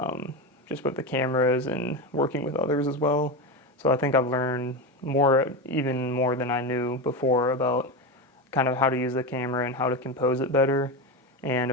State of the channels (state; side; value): normal; both; correlation 0.18